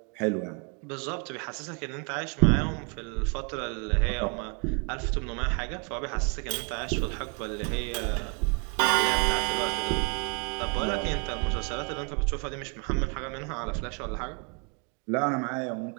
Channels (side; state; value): left; quieter; 36.4 dB